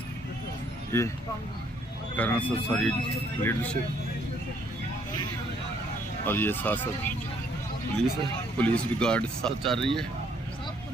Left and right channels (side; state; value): both; normal; correlation 0.66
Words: ये करना सर सारी लीडरशिप, और ये साथ साथ पुलिस है, पुलिस भी गार्ड साथ चल रही है,